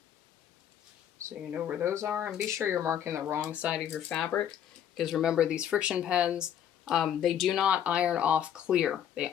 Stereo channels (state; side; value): quieter; right; 9.8 dB